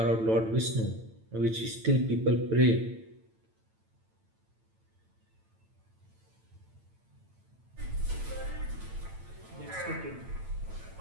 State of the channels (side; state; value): left; late; 9.0 ms